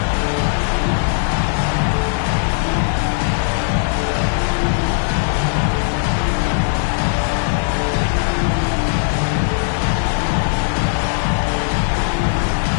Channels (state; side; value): silent; right; digital silence